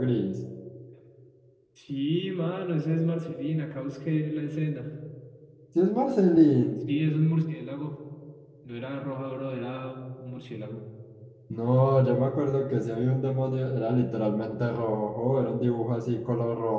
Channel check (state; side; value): identical; both; correlation 1.00